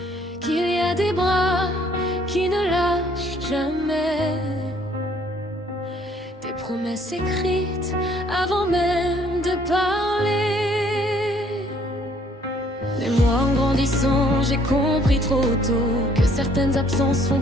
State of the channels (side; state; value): both; normal; correlation 0.62